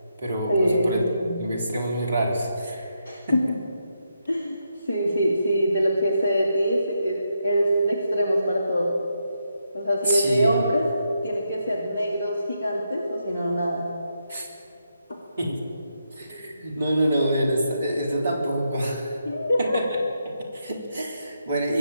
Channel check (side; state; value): both; inverted; correlation -0.81